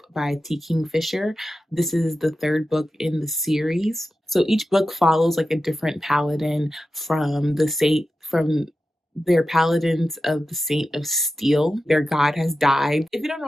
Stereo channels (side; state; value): both; normal; correlation 0.92